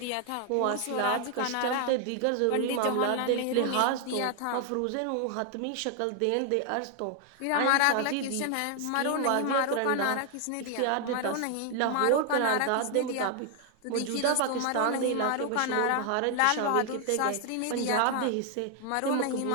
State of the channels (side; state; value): both; different; correlation 0.00